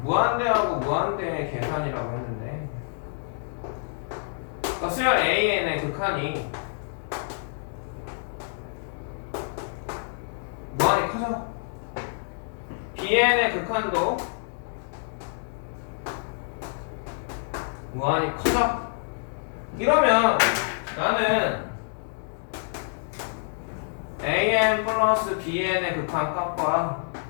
무한대하고 무한대의 계산이라고 했는데, 그러니까 수열 AN의 극한이 무한히 커져. BN의 극한도 무한히 커져. 이러면 나는 AN 플러스 BN의 극한 값과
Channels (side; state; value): right; silent; digital silence